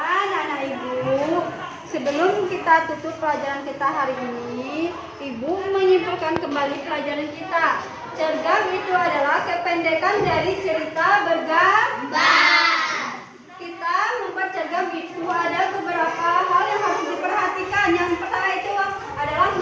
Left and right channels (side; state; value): both; identical; correlation 1.00